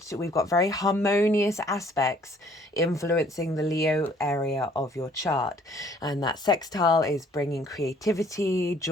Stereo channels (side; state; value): both; normal; correlation 0.59